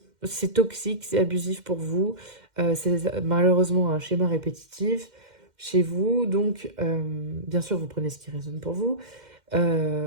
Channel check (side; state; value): left; late; 2.1 ms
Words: C'est toxique, c'est abusif pour vous. C'est malheureusement un schéma répétitif chez vous. Donc, bien sûr, vous prenez ce qui résonne pour vous.